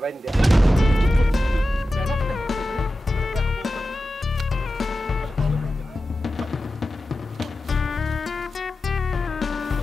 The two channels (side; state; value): both; normal; correlation 0.93